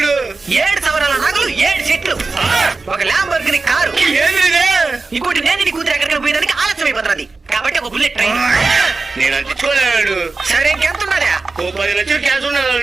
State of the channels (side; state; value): left; quieter; 3.8 dB